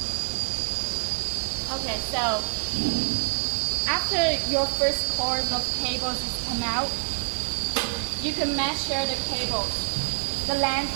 Okay, so after your first course of cables is come out, you can measure the cables, the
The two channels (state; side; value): silent; left; digital silence